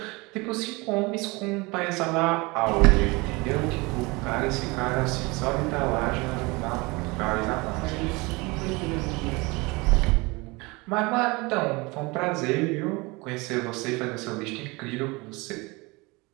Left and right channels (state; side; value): quieter; left; 25.0 dB